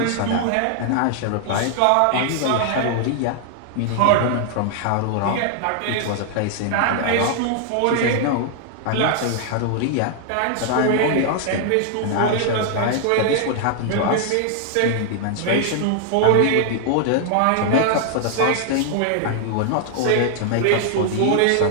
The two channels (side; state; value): both; different; correlation 0.00